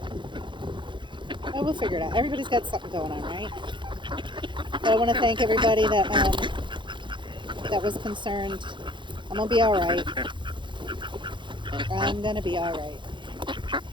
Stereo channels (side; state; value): left; late; 0.23 ms